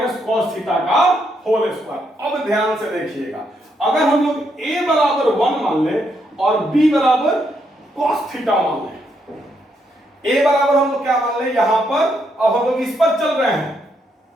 cos थीटा का होल स्क्वायर। अब ध्यान से देखिएगा, अगर हम लोग a बराबर 1 मान ले और b बराबर cos थीटा मान ले, a बराबर हम लोग क्या मान ले यहां पर? अब हम लोग इस पर चल रहे हैं,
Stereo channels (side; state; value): both; normal; correlation 0.77